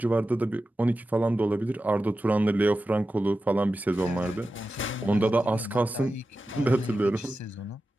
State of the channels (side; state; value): both; normal; correlation 0.93